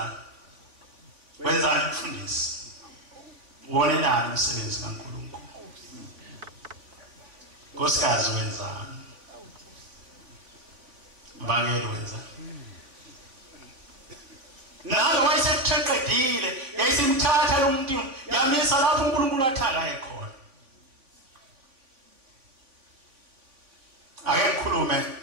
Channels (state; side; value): late; left; 3.5 ms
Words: Wenzani umfundisi? Ubonelani umsebenzi kaNkulunkulu? Nkosikazi wenzani? Mbangelo wenzani? Nalo wayeseqedile yayisimthatha lo muntu yamisa lapho uNkulunkulu athakaye khona. Ake ngikhulume.